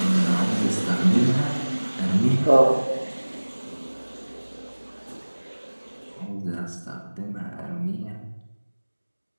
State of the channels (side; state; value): both; inverted; correlation -1.00